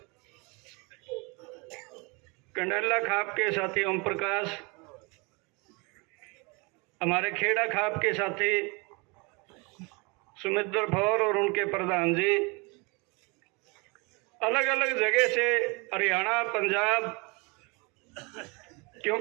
कंडला खाप के साथी ओम प्रकाश, हमारे खेड़ा खाप के साथी सुमित्र फौर और उनके प्रधान जी, अलग अलग जगह से हरियाणा, पंजाब,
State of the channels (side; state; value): left; quieter; 28.7 dB